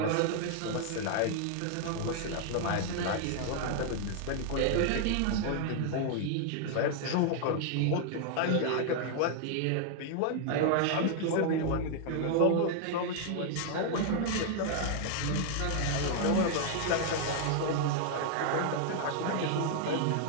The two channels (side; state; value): both; different; correlation 0.00